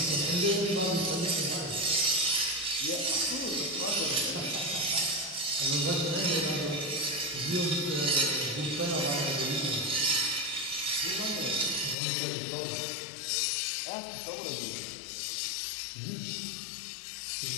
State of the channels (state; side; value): drops out; right; at 12.0 s